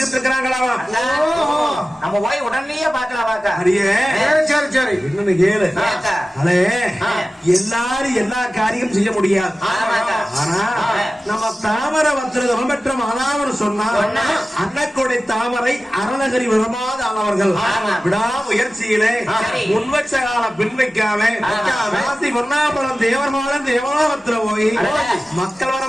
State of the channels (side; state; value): both; normal; correlation 0.95